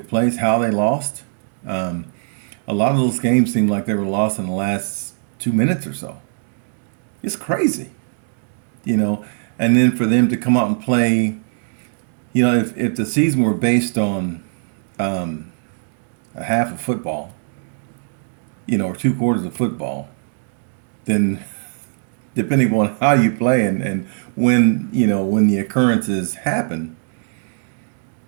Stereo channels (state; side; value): silent; left; digital silence